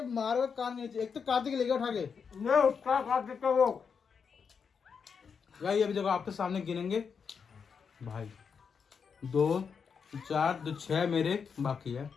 मारो कान नीचे। एक तो कार्तिक लेके उठा के नहीं उसका कार्तिक का वो भाई। अभी देखो आपके सामने गिनेंगे भाई। 2 4 2 6 मेरे बाकी है।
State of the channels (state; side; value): quieter; right; 6.2 dB